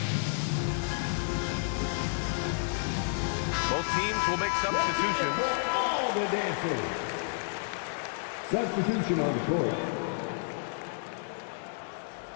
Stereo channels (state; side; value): silent; right; digital silence